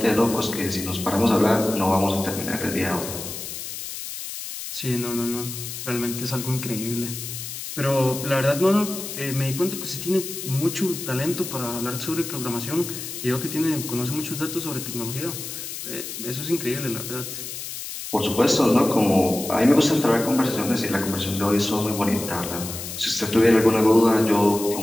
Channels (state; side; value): noise; left; hiss, 8 dB below the sound